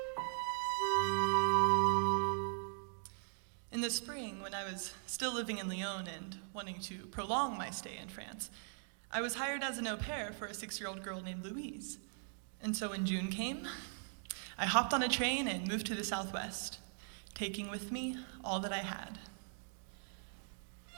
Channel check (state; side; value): silent; left; digital silence